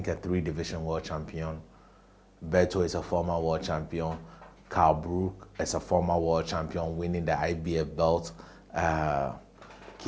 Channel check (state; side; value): identical; both; correlation 1.00